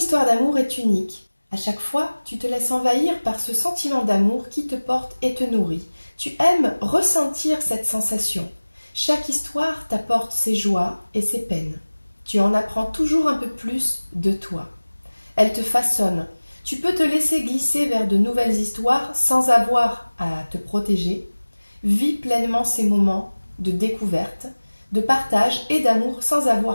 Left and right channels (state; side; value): inverted; both; correlation -1.00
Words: d'amour est unique. À chaque fois, tu te laisses envahir par ce sentiment d'amour qui te porte et te nourrit. Tu aimes ressentir cette sensation. Chaque histoire t'apporte ses joies et ses peines. Tu en apprends toujours un peu plus de toi. Elle te façonne. Tu peux te laisser glisser vers de nouvelles histoires sans avoir à te protéger. Vis pleinement ces moments de découverte, de partage et d'amour sans